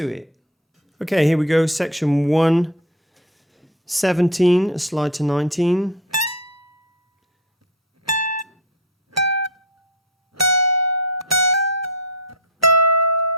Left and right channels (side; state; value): both; normal; correlation 0.24